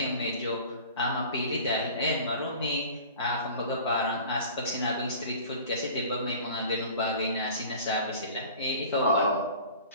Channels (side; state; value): both; inverted; correlation -0.42